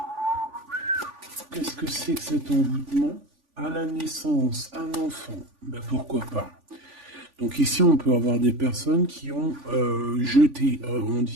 Qu'est-ce que c'est que cet envoûtement? À la naissance, un enfant. Ben pourquoi pas. Donc ici, on peut avoir des personnes qui ont jeté, on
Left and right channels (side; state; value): left; late; 3.5 ms